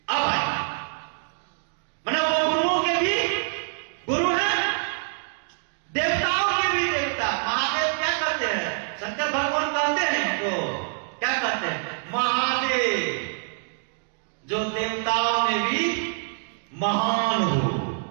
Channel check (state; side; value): silent; left; digital silence